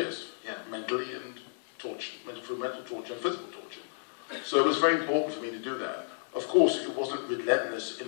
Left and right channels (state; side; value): silent; right; 57 dB below the other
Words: Yeah. mentally and through mental torture and physical torture. So it was very important for me to do that. Of course, it wasn't relentless in